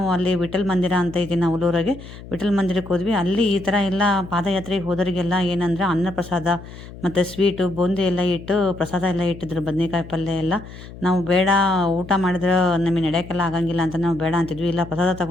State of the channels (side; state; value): left; noise; hum, 15 dB below the sound